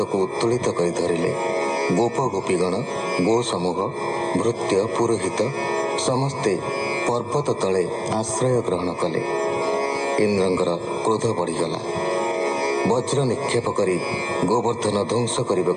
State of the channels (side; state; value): both; identical; correlation 1.00